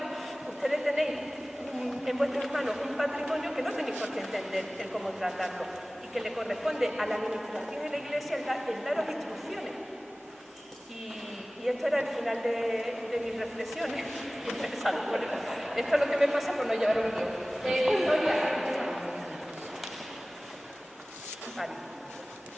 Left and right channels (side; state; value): both; normal; correlation 0.98